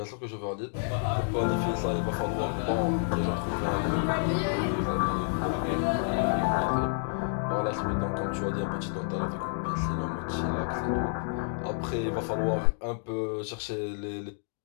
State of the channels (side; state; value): right; silent; digital silence